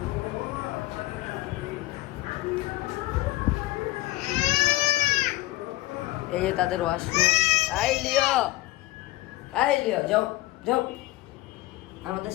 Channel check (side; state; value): right; quieter; 18.1 dB